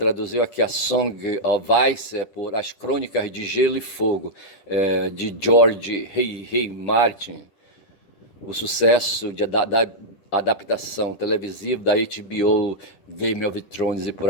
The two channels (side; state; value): right; late; 10 ms